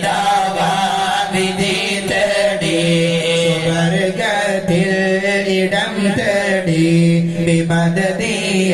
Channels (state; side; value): identical; both; correlation 1.00